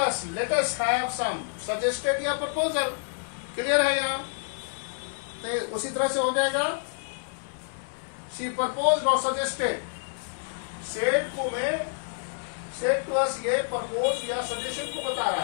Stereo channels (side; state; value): right; silent; digital silence